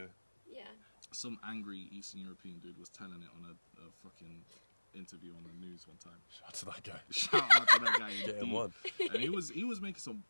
Yeah. Some angry Eastern European dude was telling it on a fucking interview on the news one time. Shout out to that guy. Shout out to that guy. Get him indeed. one. And he was making some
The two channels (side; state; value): both; inverted; correlation -1.00